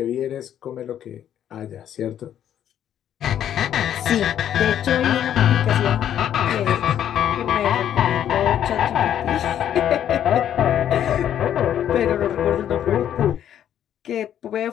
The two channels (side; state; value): right; quieter; 10.3 dB